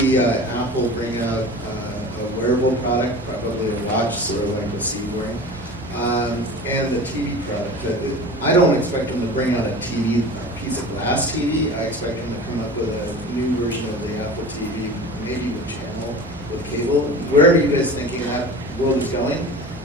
Apple bring out a wearable product, probably a watch, sort of like the C-Ring, and the TV product. I don't expect them to bring out a TV, a piece of glass TV. I expect them to come up with a new version of the Apple TV, maybe with channel, with cable. Where are you guys thinking that world is going?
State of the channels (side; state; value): both; normal; correlation 0.36